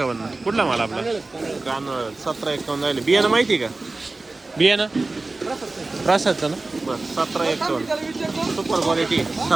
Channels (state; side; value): quieter; left; 3.3 dB